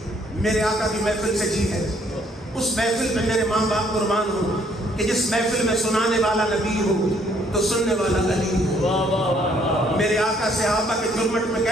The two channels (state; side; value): normal; both; correlation 0.65